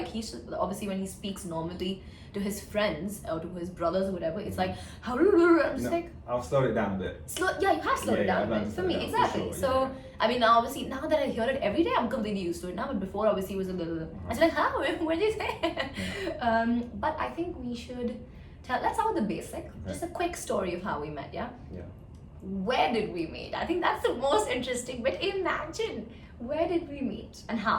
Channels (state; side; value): identical; both; correlation 1.00